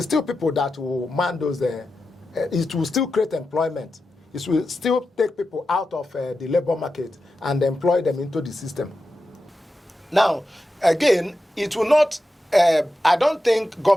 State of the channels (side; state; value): both; normal; correlation 0.91